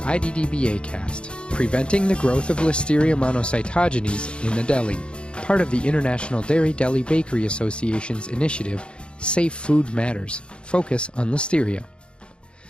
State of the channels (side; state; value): right; late; 0.055 ms